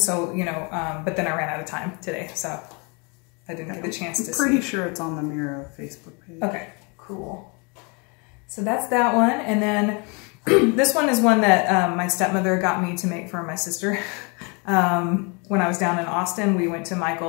you know, but then I ran out of time today, so I didn't get the chance to see. I'm pretty sure it's on the Mira Facebook page. Okay, cool. So that's that one, and then this one is one that my stepmother got me to make for my sister. When I was down in Austin, we went to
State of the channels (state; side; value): quieter; right; 32.3 dB